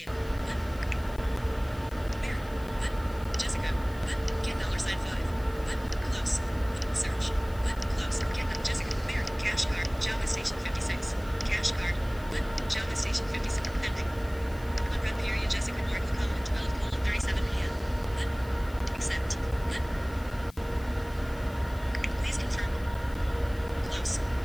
What? Mary. What? Jessica. What? Get $5. What? Close. Search. What? Close. Get Jessica. Mary. Cash card. Java Station 56. Cash card. What? Java Station 56. Pending. Unread period. Jessica North. 12:37 p.m. What? Accept. What? Please confirm. Close.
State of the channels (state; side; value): noise; left; hiss, 22 dB below the sound